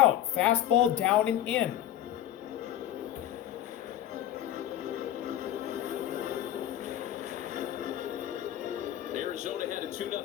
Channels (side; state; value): right; quieter; 11.9 dB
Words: Fastball down and in. Arizona had a